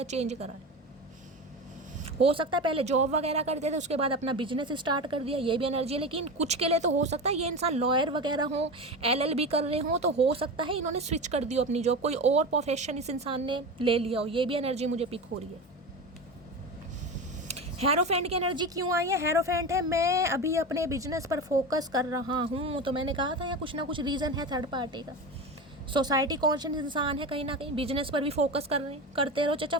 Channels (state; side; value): normal; both; correlation 0.25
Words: चेंज करा है। हो सकता है पहले जॉब वगैरह करते थे, उसके बाद अपना बिजनेस स्टार्ट कर दिया, ये भी एनर्जी है। लेकिन कुछ के लिए तो हो सकता है ये इंसान लॉयर वगैरह हो, LLB कर रहे हो, तो हो सकता है इन्होंने स्विच कर दिया अपनी जॉब, कोई और प्रोफेशन इस इंसान ने ले लिया हो, ये भी एनर्जी मुझे पिक हो रही है। हेरोफेंट की एनर्जी क्यों आई है? हेरोफेंट है मैं अभी अपने बिजनेस पर फोकस कर रहा हूँ, तो मैंने कहा था यहाँ कुछ ना कुछ रीज़न है थर्ड पार्टी का। सोसाइटी कॉन्शियस इंसान है, कहीं ना कहीं बिजनेस पर भी फोकस कर रहे हैं, करते रहो चाचा,